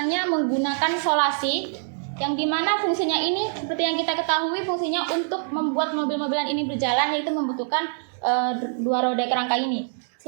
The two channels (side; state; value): left; silent; digital silence